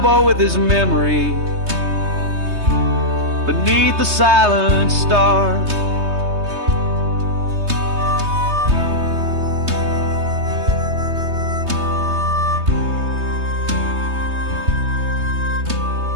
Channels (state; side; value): late; left; 3.2 ms